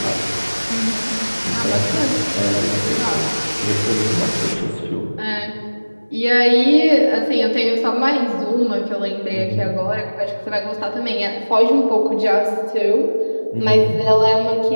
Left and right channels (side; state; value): both; inverted; correlation -1.00